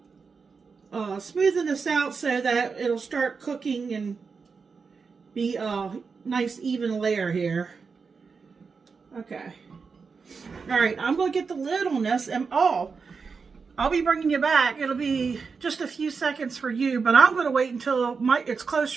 smoothing this out so that it'll start cooking and be a nice even layer here. Okay. Alright, I'm going to get the lid on this, and I'll be bringing you back. It'll be just a few seconds for you, but I'm going to wait until it's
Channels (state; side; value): quieter; left; 5.1 dB